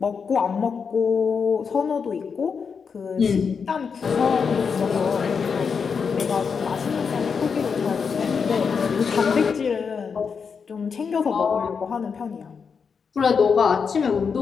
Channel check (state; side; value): quieter; right; 5.9 dB